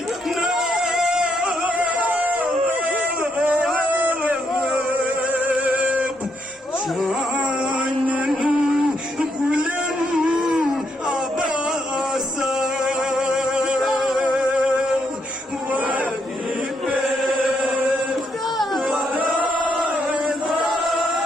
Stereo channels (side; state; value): both; normal; correlation 0.76